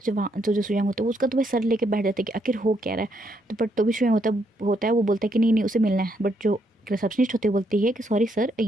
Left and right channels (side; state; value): both; normal; correlation 0.75